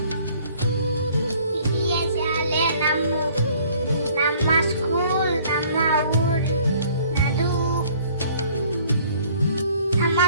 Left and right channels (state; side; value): inverted; both; correlation -0.57